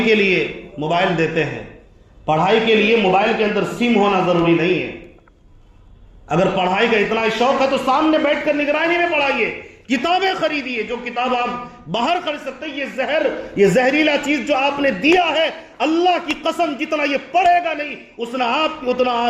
کے لیے موبائل دیتے ہیں، پڑھائی کے لیے موبائل کے اندر سم ہونا ضروری نہیں ہے۔ اگر پڑھائی کا اتنا شوق ہے تو سامنے بیٹھ کر نگرانی میں پڑھائیے، کتابیں خریدیے۔ جو کتاب آپ باہر خرید سکتے ہیں، یہ زہریلا چیز جو آپ نے دیا ہے، اللہ کی قسم جتنا یہ پڑھے گا نہیں اتنا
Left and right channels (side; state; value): both; identical; correlation 1.00